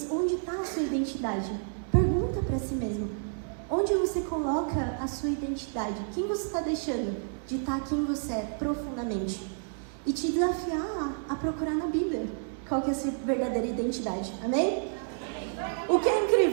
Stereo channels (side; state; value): left; silent; 58 dB below the other